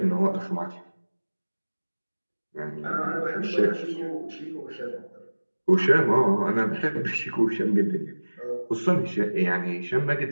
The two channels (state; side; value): inverted; both; correlation -1.00